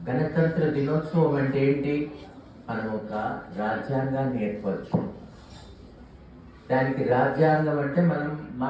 గణతంత్ర దినోత్సవం అంటే ఏంటి? మనం ఒక రాజ్యాంగాన్ని ఏర్పరచు. దానికి రాజ్యాంగం అంటే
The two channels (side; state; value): both; identical; correlation 1.00